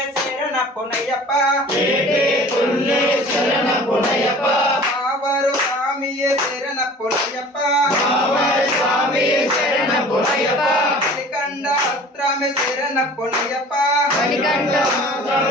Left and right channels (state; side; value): normal; both; correlation 0.45